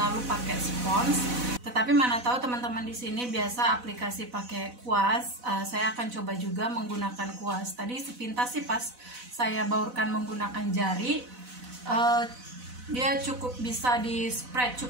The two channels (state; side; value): late; left; 4.0 ms